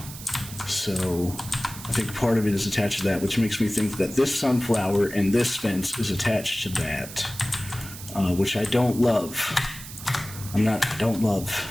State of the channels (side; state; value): right; noise; hiss, 13 dB below the sound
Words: So I think part of it is attached to that, which makes me think that this sunflower and this fence is attached to that, which I don't love. I don't love.